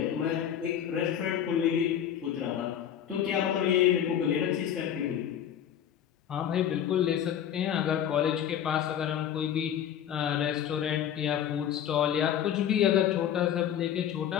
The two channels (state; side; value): quieter; right; 9.8 dB